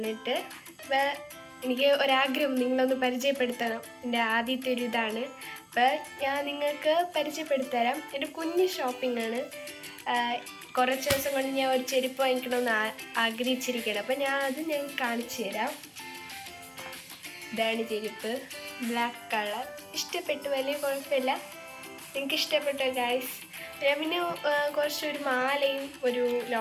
അപ്പോൾ എനിക്ക് ഒരാഗ്രഹം നിങ്ങളൊന്ന് പരിചയപ്പെടുത്തണം. എൻ്റെ ആദ്യത്തെ ഒരു ഇതാണ്. അപ്പോൾ ഞാൻ നിങ്ങൾക്ക് പരിചയപ്പെടുത്തരാം. എൻ്റെ കുഞ്ഞ് ഷോപ്പിംഗാണ്. കുറച്ച് ദിവസം കൊണ്ട് ഞാൻ ഒരു ചെരുപ്പ് വാങ്ങിക്കണമെന്ന് ആഗ്രഹിച്ചിരിക്കുകയാണ്. അപ്പോൾ ഞാൻ കാണിച്ചു തരാം. ഇതാണ് ചെരുപ്പ്, ബ്ലാക്ക് കളർ. ഇഷ്ടപ്പെട്ടു, വലിയ കുഴപ്പമില്ല. എനിക്ക് ഇഷ്ടപ്പെട്ടു ഗായ്സ്. ഞാൻ പിന്നെ കുറച്ചൊരു മാലയും ഒരു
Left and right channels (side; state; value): both; identical; correlation 1.00